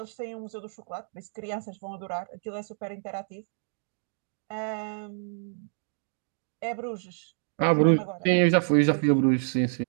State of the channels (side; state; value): left; silent; digital silence